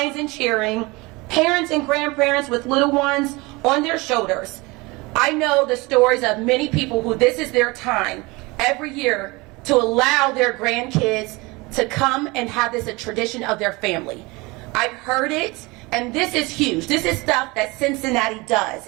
and cheering, parents and grandparents with little ones on their shoulders. I know the stories of many people who this is their time every year to allow their grandkids to come and have this a tradition of their family. I've heard it, and this is huge. This is stuff that Cincinnati does,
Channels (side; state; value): left; quieter; 24.3 dB